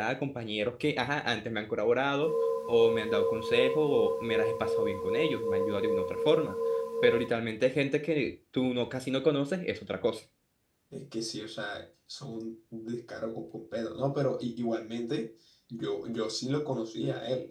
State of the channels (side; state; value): both; identical; correlation 1.00